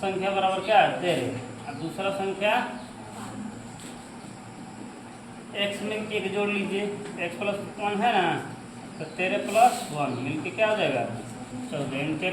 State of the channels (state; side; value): identical; both; correlation 1.00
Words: बराबर क्या है? 13 और दूसरा संख्या x में 1 जोड़ लीजिए, x प्लस 1 है ना, तो 13 प्लस 1 मिलके क्या हो जाएगा? 14।